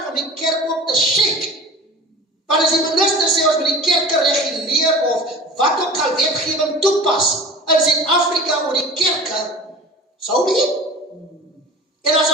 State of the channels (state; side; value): normal; both; correlation 0.39